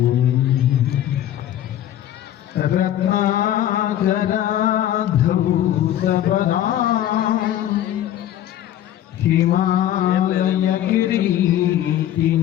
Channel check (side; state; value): right; quieter; 11.8 dB